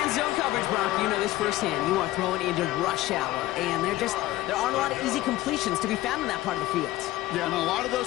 zone coverage, Brock. You know this firsthand. You are throwing into rush hour, and there aren't a lot of easy completions to be found in that part of the field. Yeah, and a lot of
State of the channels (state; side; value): quieter; right; 16.3 dB